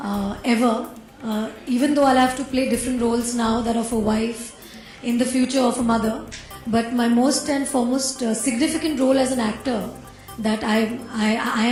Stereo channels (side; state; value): both; identical; correlation 1.00